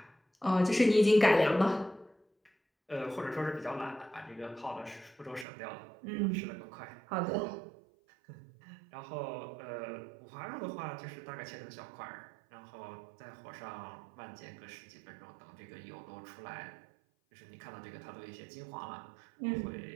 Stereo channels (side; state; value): left; drops out; at 5.5 s